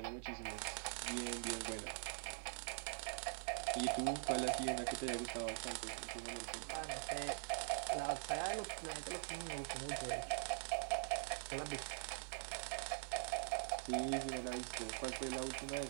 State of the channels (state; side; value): silent; left; digital silence